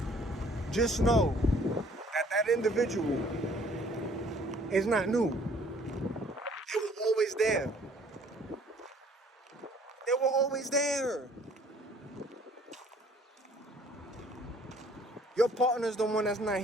just know that individual is not new. They were always there. They were always there. Your partner's the one that's not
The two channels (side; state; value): both; normal; correlation 0.57